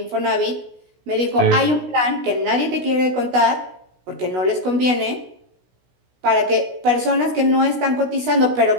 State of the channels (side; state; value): left; late; 16 ms